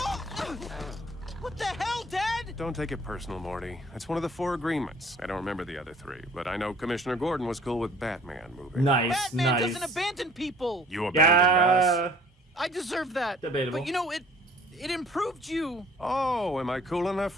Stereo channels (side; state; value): both; normal; correlation 0.53